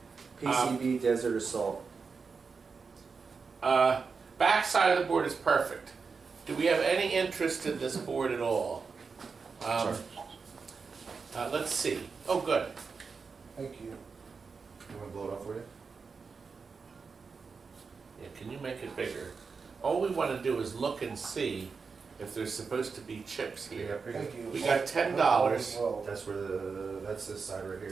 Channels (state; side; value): quieter; left; 5.0 dB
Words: PCB Desert Assault. Back side of the board is perfect. Do we have any interest in this board at all? Let's see. Oh, good. Thank you. You want to blow it up for you? Yeah, can you make it bigger? All we want to do is look and see if there's supposed to be chips here. Thank you. We got $10. Well, That's where that's this side right